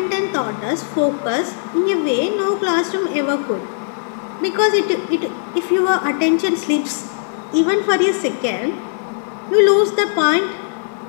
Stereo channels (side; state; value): right; silent; digital silence